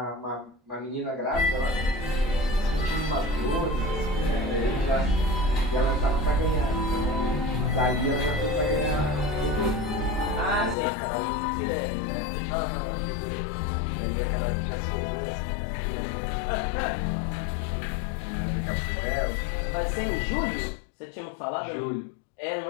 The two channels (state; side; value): drops out; right; at 10.8 s